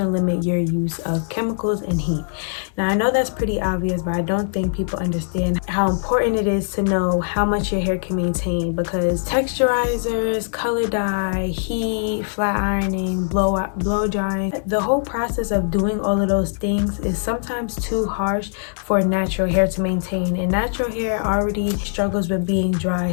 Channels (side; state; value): right; silent; digital silence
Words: to limit your use of chemicals and heat. Now I know that's pretty obvious, but I don't think people understand how important it is to know how much your hair can maintain, because texturizers, color dye, heat, flat ironing, blow drying, the whole process of doing all of those things is sometimes too harsh for natural hair to maintain, and natural hair already struggles with being dry.